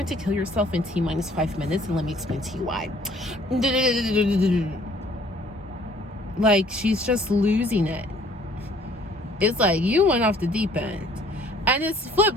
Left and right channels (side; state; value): both; normal; correlation 0.58